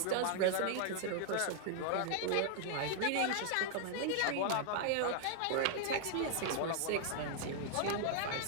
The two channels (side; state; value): both; different; correlation 0.00